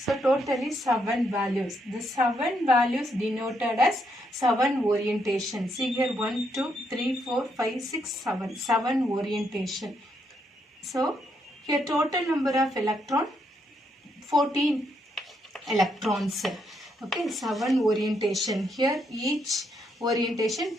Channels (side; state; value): both; normal; correlation 0.76